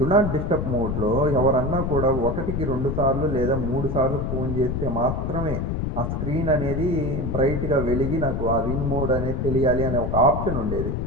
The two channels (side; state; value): left; noise; rumble, 1 dB below the sound